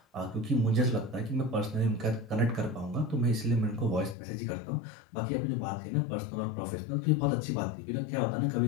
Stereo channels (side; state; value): right; drops out; at 4.2 s